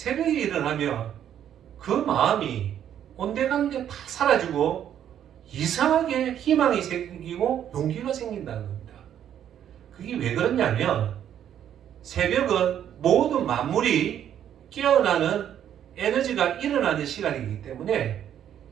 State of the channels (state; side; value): quieter; left; 10.1 dB